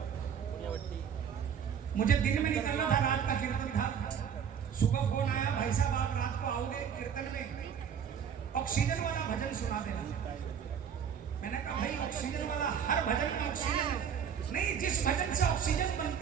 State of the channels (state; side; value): quieter; left; 7.8 dB